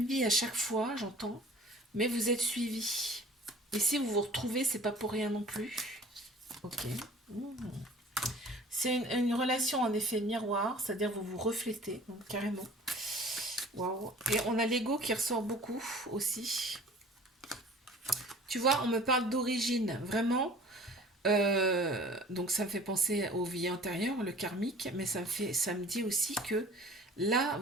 vie à chaque fois, j'entends, mais vous êtes suivis. Et si vous vous retrouvez, c'est pas pour rien non plus. Ok. C'est une relation en effet miroir, c'est-à-dire vous vous reflétez, donc, carrément. Waouh. Et on a l'ego qui ressort beaucoup aussi. Tu vois, on me parle d'origine, vraiment. Donc ça me fait penser aux vies antérieures, le karmique, mais ça me dit aussi que là,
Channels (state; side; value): normal; both; correlation 0.47